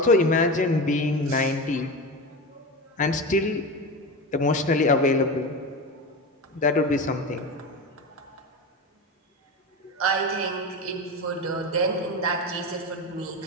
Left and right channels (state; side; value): normal; both; correlation 0.23